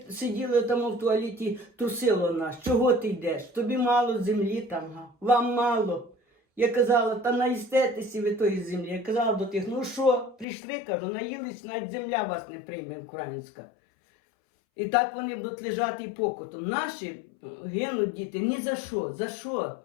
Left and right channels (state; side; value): drops out; right; at 10.5 s